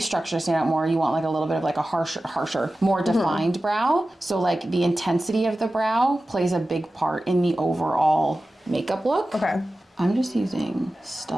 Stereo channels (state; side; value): normal; both; correlation 0.95